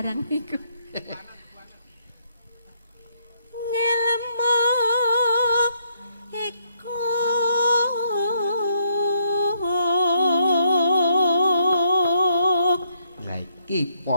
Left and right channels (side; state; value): both; inverted; correlation -0.73